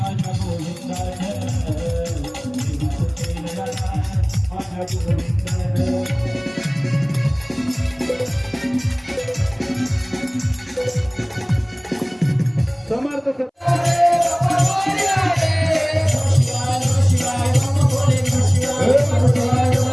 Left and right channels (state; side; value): identical; both; correlation 1.00